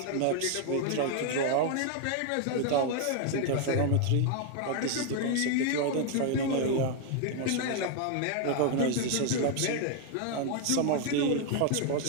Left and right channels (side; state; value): both; different; correlation 0.00